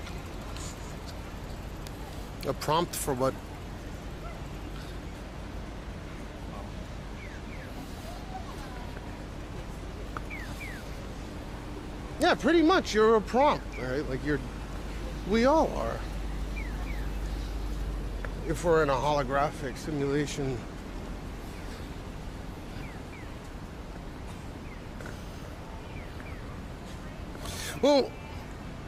A prompt for what? Yeah, pretty much. You're a prompt, right? Like we all are. If we're in a holographic simulation. Well,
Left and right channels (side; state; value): both; identical; correlation 1.00